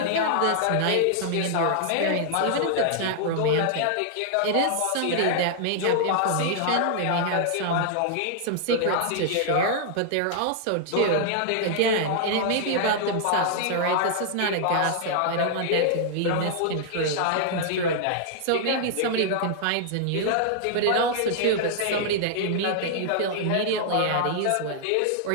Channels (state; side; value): different; both; correlation -0.01